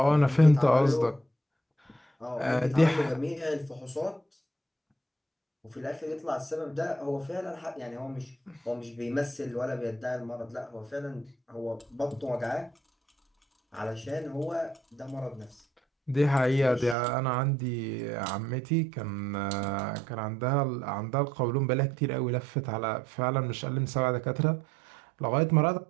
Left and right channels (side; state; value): left; drops out; at 16.9 s